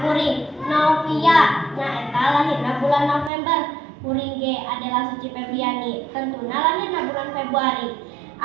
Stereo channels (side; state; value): left; drops out; at 3.3 s